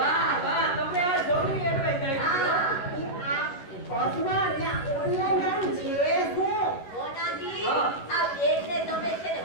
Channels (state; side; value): late; right; 11 ms